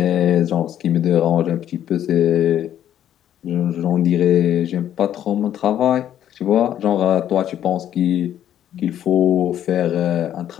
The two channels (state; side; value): quieter; right; 10.9 dB